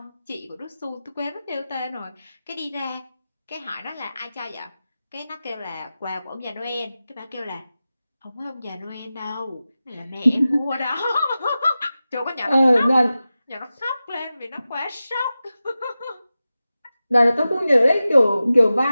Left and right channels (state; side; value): inverted; both; correlation -0.94